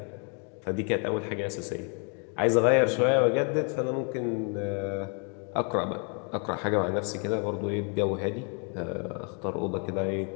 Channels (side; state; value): right; quieter; 39.1 dB